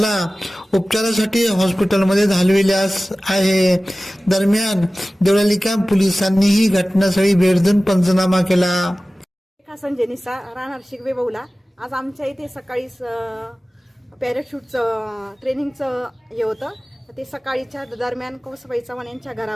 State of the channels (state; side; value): normal; both; correlation 0.97